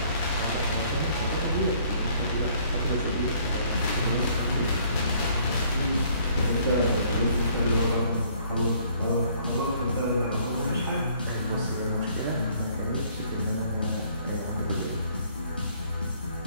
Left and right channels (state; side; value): inverted; both; correlation -0.62